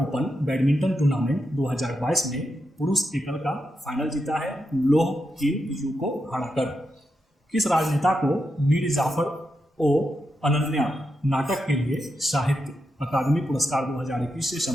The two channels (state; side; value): normal; both; correlation 0.86